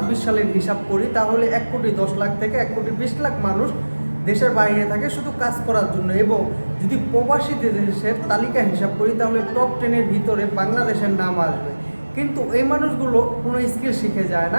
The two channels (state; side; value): inverted; both; correlation -1.00